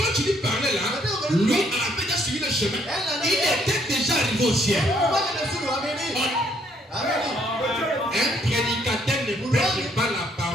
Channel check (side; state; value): both; normal; correlation 0.67